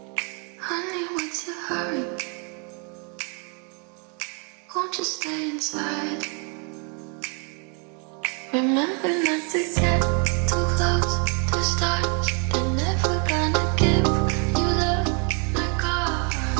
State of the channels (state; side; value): quieter; left; 37.5 dB